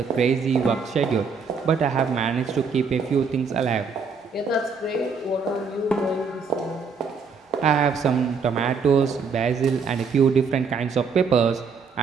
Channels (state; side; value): quieter; left; 5.3 dB